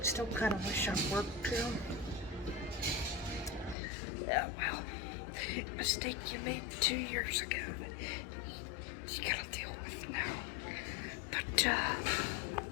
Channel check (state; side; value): drops out; right; at 3.8 s